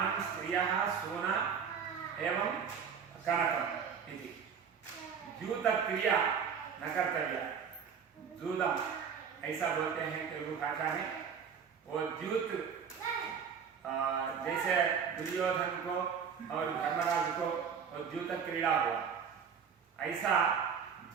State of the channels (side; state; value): left; quieter; 6.9 dB